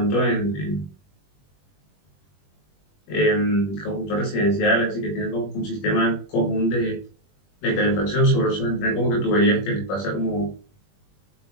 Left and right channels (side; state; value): right; late; 21 ms